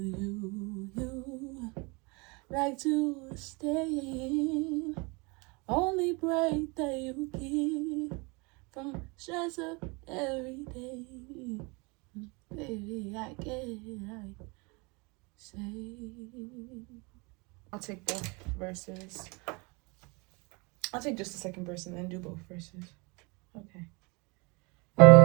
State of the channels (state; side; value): quieter; left; 28.5 dB